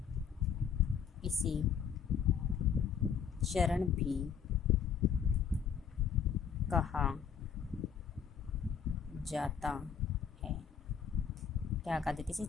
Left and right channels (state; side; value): quieter; right; 7.3 dB